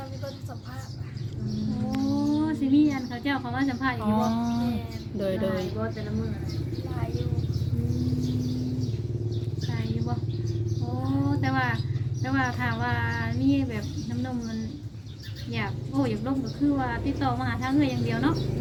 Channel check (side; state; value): both; identical; correlation 1.00